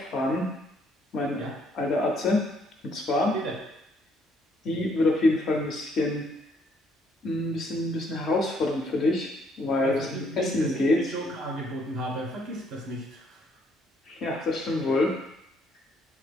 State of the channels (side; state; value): both; normal; correlation 0.68